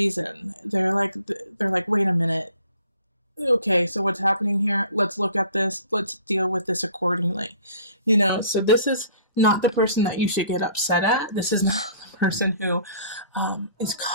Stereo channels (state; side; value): inverted; both; correlation -0.53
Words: They're like, wait a minute. Okay, so what's happening here? Let's look at this. Let's deal with this accordingly. So this is not the person that you should get upset at. This is not the person who is